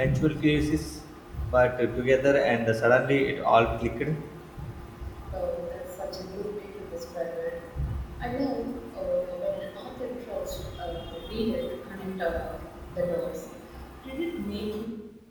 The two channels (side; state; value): both; identical; correlation 1.00